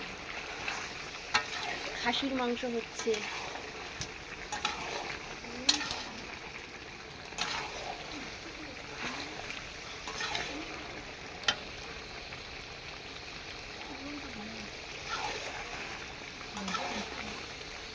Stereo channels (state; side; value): identical; both; correlation 1.00